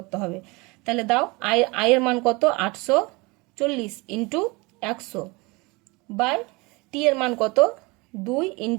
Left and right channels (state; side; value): quieter; left; 25.7 dB